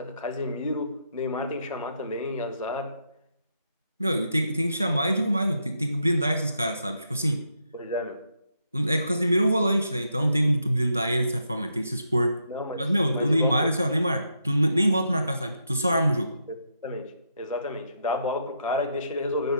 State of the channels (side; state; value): both; inverted; correlation -0.80